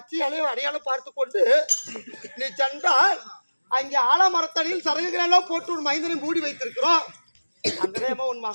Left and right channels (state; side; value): inverted; both; correlation -1.00